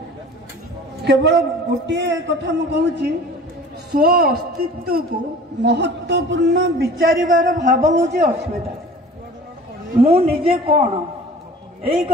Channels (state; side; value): normal; both; correlation 0.43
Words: केवल गोटे कथा मु कहूँ, स्व अस्तित्व को महत्वपूर्ण विचारिबार भाव हूँ अस्मिता। मु निजे कौन यही